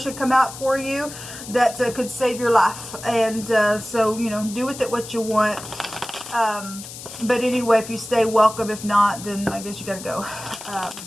come out for you that could save your life. And so, you know, do with it what you want. But anyway, if you stay, welcome. If not, then I guess you got to go.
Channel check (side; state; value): left; noise; hiss, 13 dB below the sound